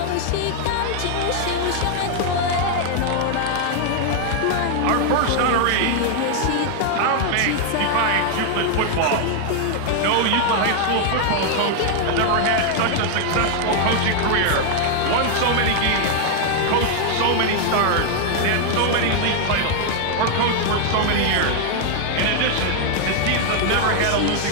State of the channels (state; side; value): different; both; correlation 0.00